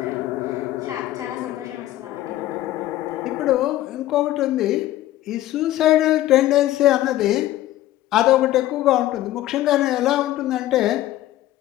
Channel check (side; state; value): right; quieter; 14.6 dB